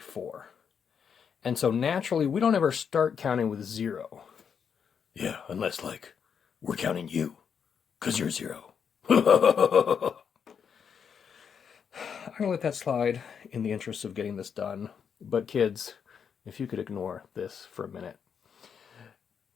And so naturally, we don't ever start counting with 0. Yeah, unless, like, we're counting you, 'cause you're 0. I'm going to let that slide in the interest of getting this done. But kids, if you could ignore this for a minute.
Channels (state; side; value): quieter; right; 7.1 dB